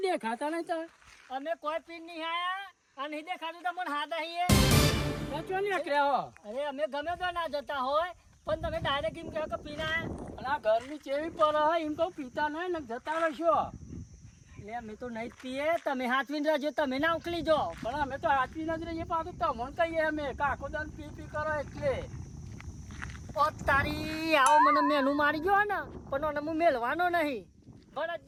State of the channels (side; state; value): both; identical; correlation 1.00